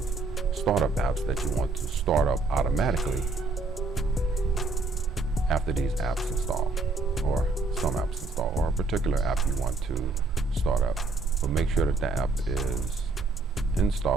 startup apps that you want to start up automatically after these apps install, or some apps install, or a particular app you want to start up. But make sure that the app is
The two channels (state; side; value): quieter; left; 3.6 dB